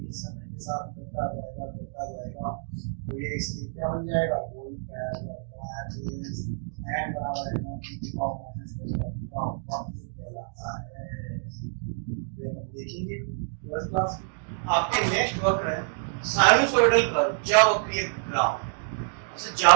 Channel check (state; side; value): silent; left; 60 dB below the other